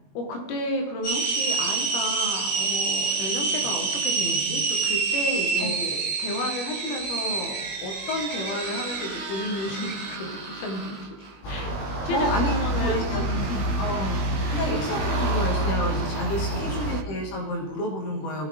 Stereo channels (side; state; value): right; late; 20 ms